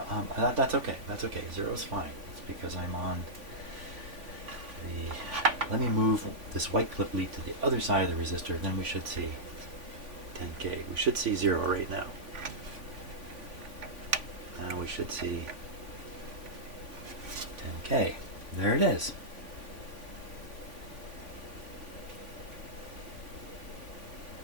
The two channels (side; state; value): left; late; 3.5 ms